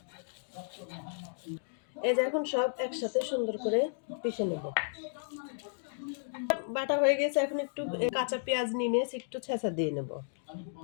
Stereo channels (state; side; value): silent; right; digital silence